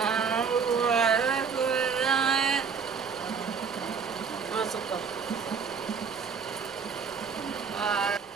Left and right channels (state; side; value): quieter; left; 6.0 dB